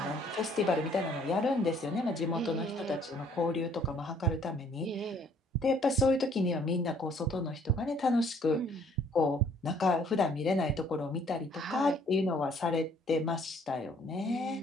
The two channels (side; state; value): both; normal; correlation 0.60